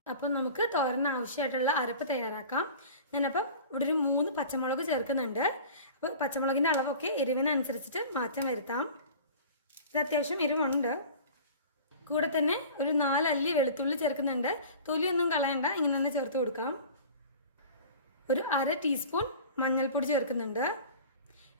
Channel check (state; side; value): inverted; both; correlation -0.40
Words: അപ്പം നമുക്ക് തോരന് ആവശ്യമായിട്ടുള്ള അരപ്പ് തയ്യാറാക്കാം. ഞാനപ്പം ഇവിടെ ഒരു 3 പച്ചമുളക് ചേർക്കുന്നുണ്ട്. അപ്പോൾ പച്ചമുളകിൻ്റെ അളവൊക്കെ എരിവിനനുസരിച്ചിട്ട് മാറ്റം വരുത്താം. ഇത് അത്യാവശ്യം എരിവുണ്ട്. കൂടെ തന്നെ ഒരു 4 അല്ലി വെളുത്തുള്ളി ചേർക്കുന്നുണ്ട്. തൊലിയൊന്നും കളയണ്ട, ഇങ്ങനെ തന്നെ ചേർത്ത് കൊടുക്കാം. ഒരു 1/2 ടീസ്പൂൺ മഞ്ഞൾപ്പൊടി ചേർക്കുന്നുണ്ട്.